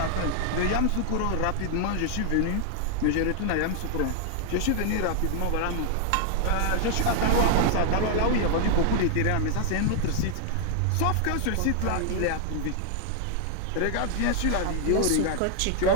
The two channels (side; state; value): both; different; correlation 0.00